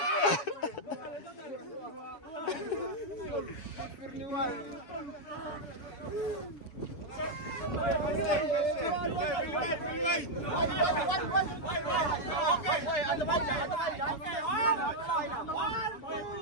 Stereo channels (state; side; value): late; right; 7.1 ms